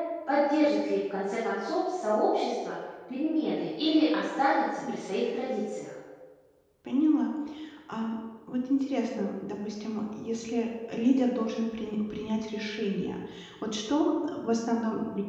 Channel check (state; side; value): identical; both; correlation 1.00